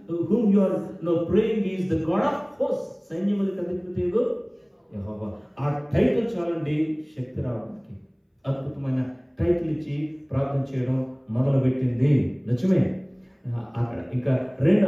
whom you are praying is the God of hosts. సైన్యములకు అధిపతియగు యెహోవా. ఆ టైటిల్ చాలండి శక్తి రావడానికి. అద్భుతమైన టైటిల్ ఇచ్చి ప్రార్థన చేయడం మొదలు పెట్టింది. నిజమే. అక్కడ ఇంకా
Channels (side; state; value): both; identical; correlation 1.00